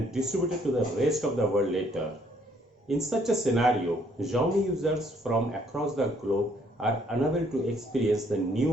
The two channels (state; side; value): normal; both; correlation 0.65